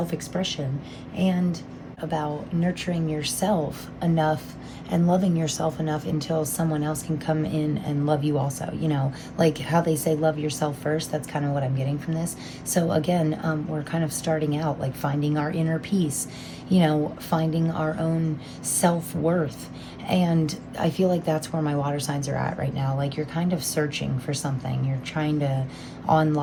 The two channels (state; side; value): identical; both; correlation 1.00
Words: and about nurturing yourself enough and loving yourself enough until someone else can come in and love you also, you know, like how they say love yourself first. That's kind of what I'm getting from this. So again, we're kind of starting out like finding our inner peace, you know, finding our own self-worth. And I feel like that's where my water signs are at right now. Like you're kind of searching for something. You're trying to